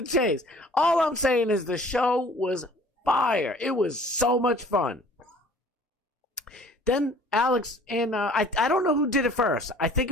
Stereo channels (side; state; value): both; normal; correlation 0.52